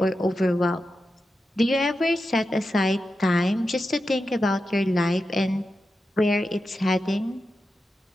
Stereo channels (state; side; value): normal; both; correlation 0.90